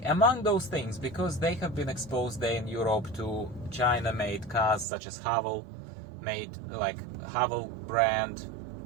Among those things, because they have been exposed there in Europe to China-made cars such as Haval, made like Haval brand,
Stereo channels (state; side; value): drops out; left; at 4.9 s